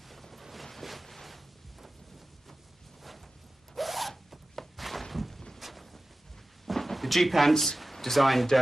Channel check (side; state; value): both; normal; correlation 0.95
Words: The G-pants designed,